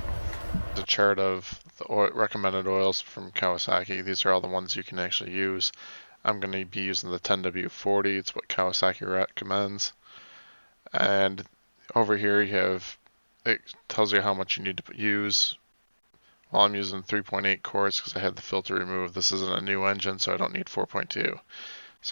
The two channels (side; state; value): both; inverted; correlation -1.00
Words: The chart of the recommended oils from Kawasaki. These are all the ones you can actually use. I'm going to be using the 10W40. It's what Kawasaki recommends. And over here you have, it tells you how much you need to use. Well, I'm using 3.8 quarts because I had the filter removed. This isn't a new engine, so I don't need 4.2.